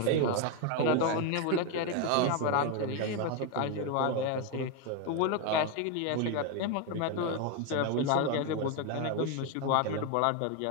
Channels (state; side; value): different; both; correlation 0.02